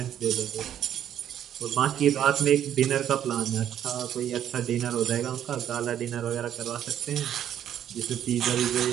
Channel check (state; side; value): quieter; left; 10.3 dB